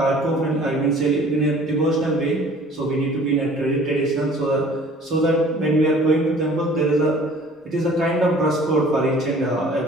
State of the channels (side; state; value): both; normal; correlation 0.51